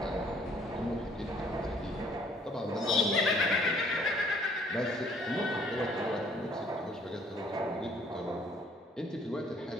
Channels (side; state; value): both; normal; correlation 0.60